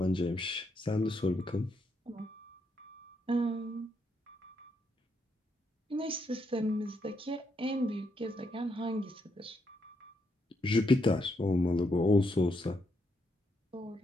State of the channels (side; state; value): both; normal; correlation 0.77